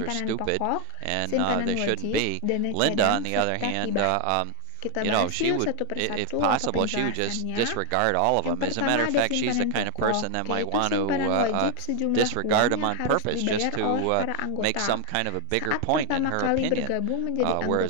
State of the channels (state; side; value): different; both; correlation 0.00